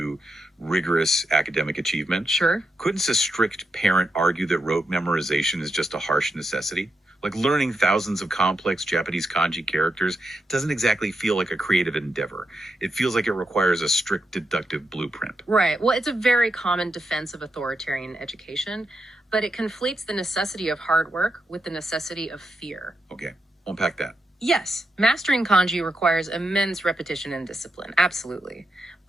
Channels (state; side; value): normal; both; correlation 0.85